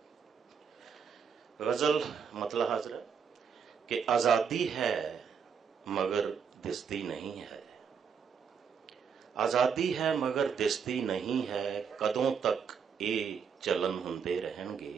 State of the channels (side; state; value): left; quieter; 6.7 dB